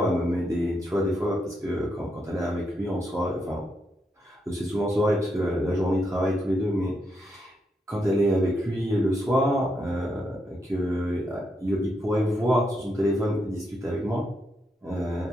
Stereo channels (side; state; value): both; normal; correlation 0.81